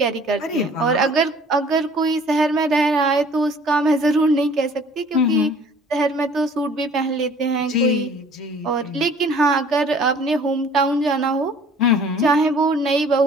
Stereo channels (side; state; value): both; normal; correlation 0.52